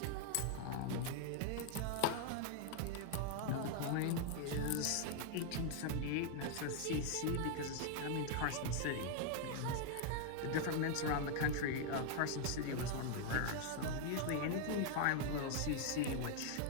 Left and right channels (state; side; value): different; both; correlation 0.00